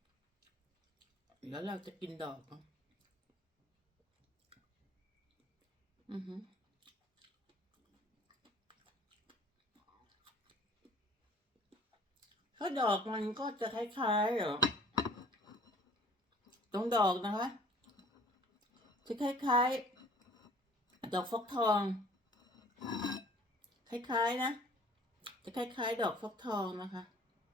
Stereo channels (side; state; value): both; normal; correlation 0.52